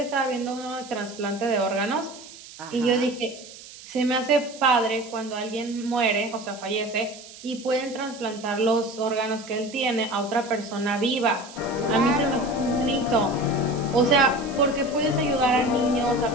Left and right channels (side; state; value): right; noise; hiss, 17 dB below the sound